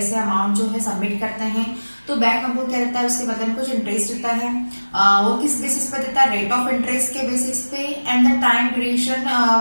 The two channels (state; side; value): inverted; both; correlation -1.00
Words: अमाउंट जो है सबमिट करते हैं तो बैंक हमको क्या देता है, उसके बदले में कुछ इंटरेस्ट देता है। वो किस बेसिस पर देता है? रेट ऑफ इंटरेस्ट के बेसिस पे and the time duration